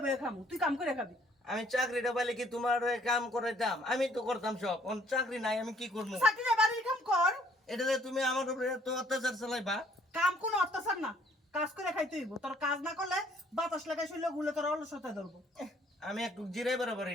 বয়ে খামু, তুই কাম করে খাবি। আমি চাকরিটা পাইলে কি তোমার হয়ে কাম করে দাম? আমি তো করতাম সব, চাকরি নাই আমি কি করবো? চাকরি না, বাড়ির কাম কর। এটা যে তুমি আমার উপরে তো অত্যাচার চালাইবা। কাম কোনো অত্যাচার না, কাজ করে খাইতে হইব। তোর কাজ না করলে বাতাস লাগাই শুইলে গুলে তোর অলসতায় ধরবো। আমি একটু জিরাই পারি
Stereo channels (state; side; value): normal; both; correlation 0.62